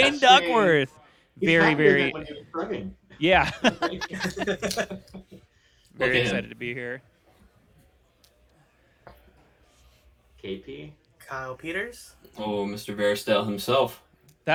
Duckworth. Very, yeah. Very excited to be here. KP. Kyle Peters. Oh, Mr. Veristel himself.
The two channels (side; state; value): both; identical; correlation 1.00